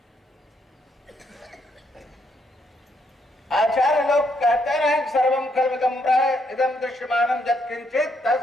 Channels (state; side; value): normal; both; correlation 0.74